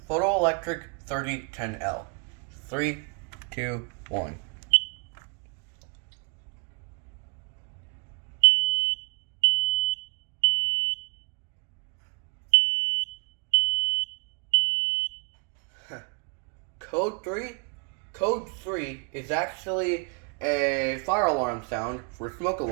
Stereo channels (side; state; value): left; quieter; 38.4 dB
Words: Photoelectric 3010L. 3, 2, 1. Code 3? Code 3 is actually a fire alarm sound for smoke